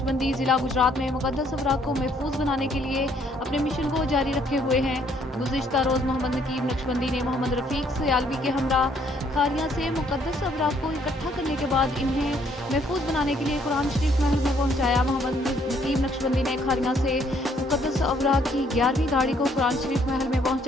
ज़िला गुजरात में मुकद्दस अवराक को महफूज बनाने के लिए अपने मिशन को जारी रखे हुए हैं। गुज़िश्ता रोज़ मोहम्मद नकीब नक्शबंदी ने मोहम्मद रफ़ीक सयालवी के हमरा खारियां से मुकद्दस अवराक को इकट्ठा करने के बाद इन्हें महफूज बनाने के लिए कुरान शरीफ महल में पहुंचाया। मोहम्मद नकीब नक्शबंदी ने खारियां से मुकद्दस अवराक की 11वीं गाड़ी को कुरान शरीफ महल में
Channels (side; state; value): both; normal; correlation 0.66